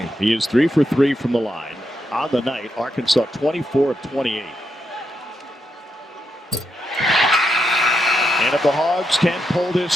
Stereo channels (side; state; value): both; normal; correlation 0.84